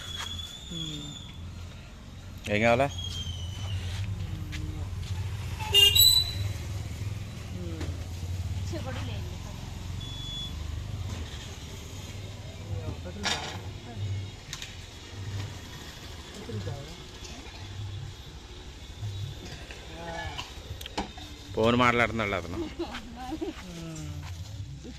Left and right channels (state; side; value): identical; both; correlation 1.00